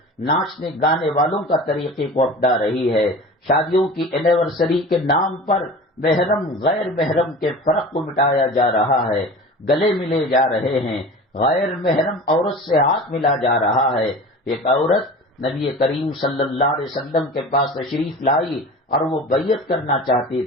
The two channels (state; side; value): normal; both; correlation 0.36